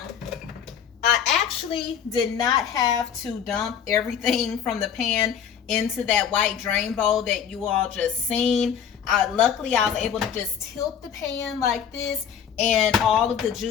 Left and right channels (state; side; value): quieter; right; 8.1 dB